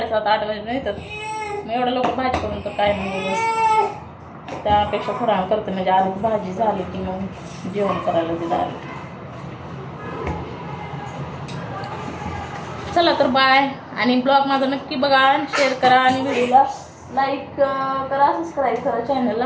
8 वाजता येतात. मग एवढं लवकर भाजी करून तर काय नाही, त्यापेक्षा थोडा वेळ करते, म्हणजे आधी भाजी झाली की मग जेवण करायला दिलं. चला तर बाय. आणि ब्लॉग माझा नक्की बघा, शेअर करा आणि व्हिडिओला लाईक करा, सबस्क्राईब करा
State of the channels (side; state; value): both; identical; correlation 1.00